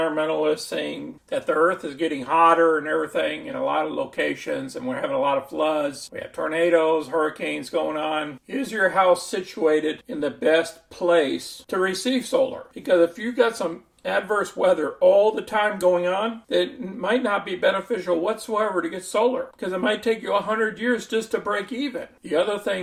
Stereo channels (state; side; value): identical; both; correlation 1.00